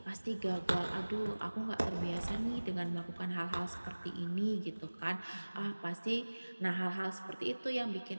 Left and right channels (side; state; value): both; inverted; correlation -1.00